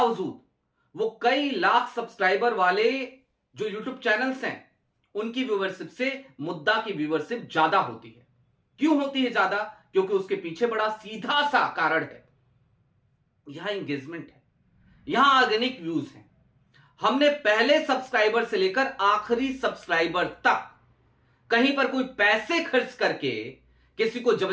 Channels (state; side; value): identical; both; correlation 1.00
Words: वो कई लाख सब्सक्राइबर वाले जो यूट्यूब चैनल्स हैं, उनकी व्यूअरशिप से मुद्दा की व्यूअरशिप ज्यादा होती है। क्यों होती है ज्यादा? क्योंकि उसके पीछे बड़ा सीधा सा कारण है, यहां एंगेजमेंट है, यहां ऑर्गेनिक व्यूज हैं। हमने पहले सब्सक्राइबर से लेकर आखिरी सब्सक्राइबर तक कहीं पर कोई पैसे खर्च करके किसी को